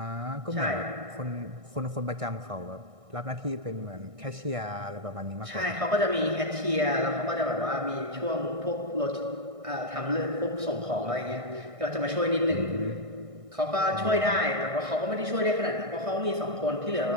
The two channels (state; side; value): late; left; 1.6 ms